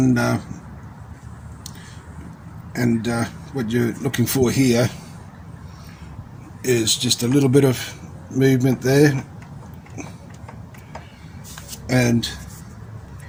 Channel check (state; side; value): identical; both; correlation 1.00